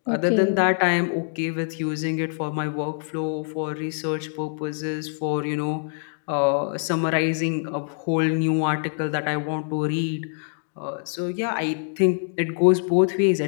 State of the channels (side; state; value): right; silent; digital silence